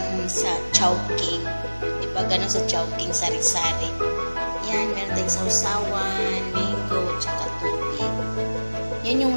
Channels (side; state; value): both; inverted; correlation -1.00